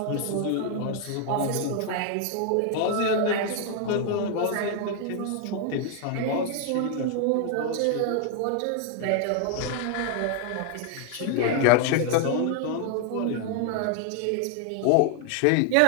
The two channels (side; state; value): both; different; correlation 0.00